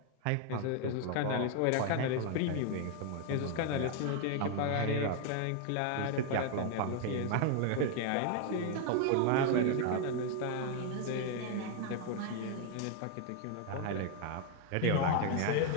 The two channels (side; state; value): both; different; correlation 0.00